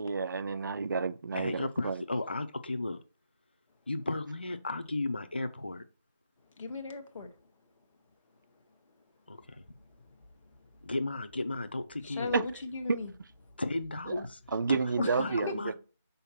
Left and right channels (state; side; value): inverted; both; correlation -0.78